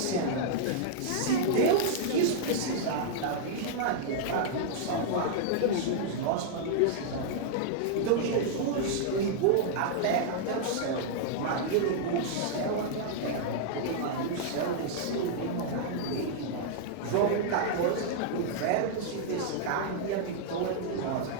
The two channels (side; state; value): both; different; correlation -0.01